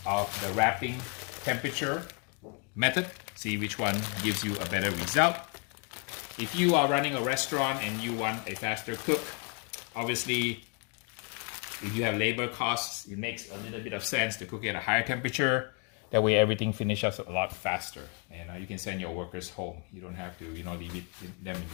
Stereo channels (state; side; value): quieter; right; 35.7 dB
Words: of the wrapping temperature method, see which one gives you a better result. If you are running a restaurant and you want a faster cook, obviously if you have labor costs, it makes a little bit of sense to cook it at a higher temperature. That way everything finishes a lot faster, and you can send your workers home. You don't have to, leave them in